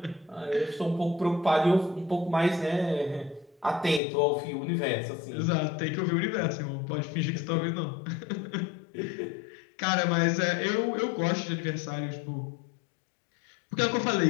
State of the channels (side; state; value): right; drops out; at 4.0 s